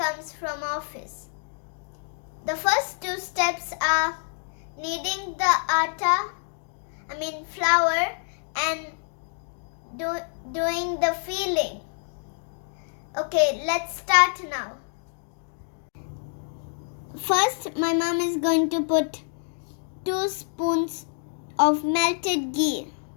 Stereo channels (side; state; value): right; silent; 60 dB below the other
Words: from office. The first 2 steps are kneading the flour and doing the filling. Okay, let's start now. First, my mom is going to put 2 spoons of melted ghee.